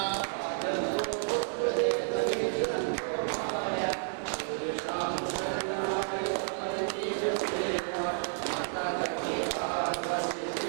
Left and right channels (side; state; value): left; silent; digital silence